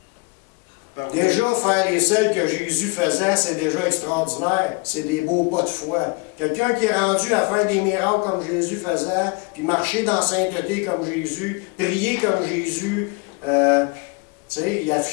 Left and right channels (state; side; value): quieter; right; 28.2 dB